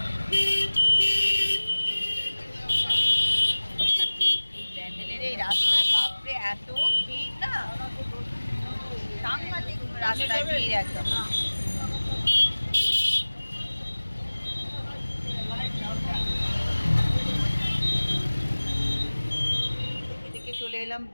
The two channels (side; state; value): both; inverted; correlation -1.00